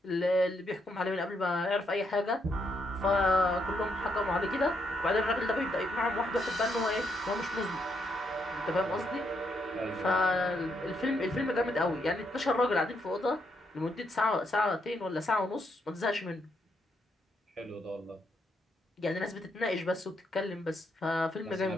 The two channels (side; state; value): both; normal; correlation 0.77